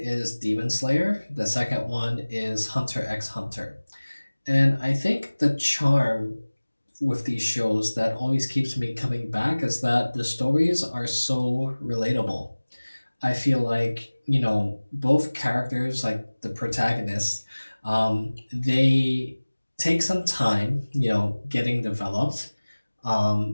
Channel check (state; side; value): inverted; both; correlation -1.00